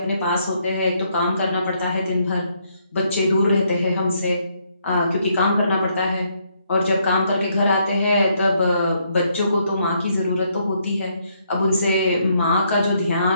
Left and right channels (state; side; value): inverted; both; correlation -0.73